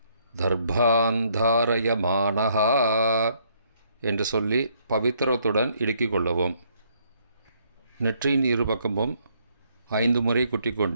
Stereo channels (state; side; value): inverted; both; correlation -0.69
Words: தர்பாந்தாரயமானஹா என்று சொல்லி பவித்திரத்துடன் இடுக்கிக் கொள்ளவும். நெற்றியின் இருபக்கமும் 5 முறை